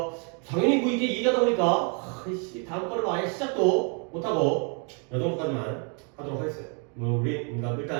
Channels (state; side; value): quieter; left; 37.8 dB